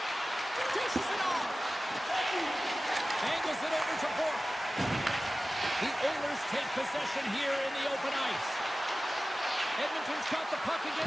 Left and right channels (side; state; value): both; normal; correlation 0.96